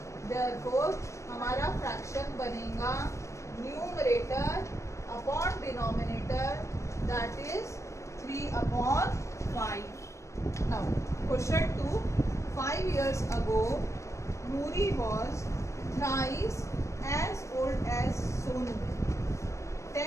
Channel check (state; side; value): late; right; 0.15 ms